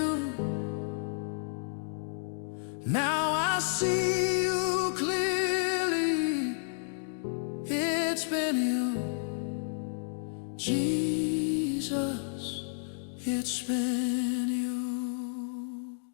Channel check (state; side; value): silent; right; digital silence